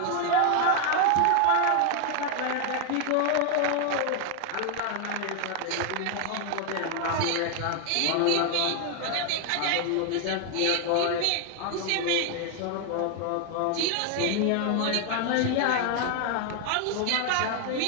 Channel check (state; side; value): different; both; correlation 0.00